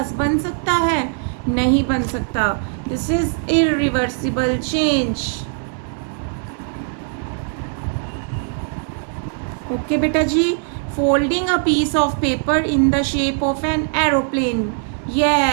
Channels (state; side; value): silent; left; 58 dB below the other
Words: बन सकता है? नहीं बन सकता. This is irreversible change. Okay बेटा जी. Folding a piece of paper in the shape of an aeroplane.